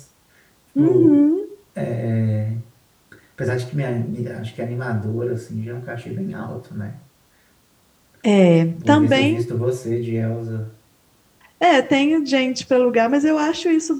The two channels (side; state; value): both; identical; correlation 1.00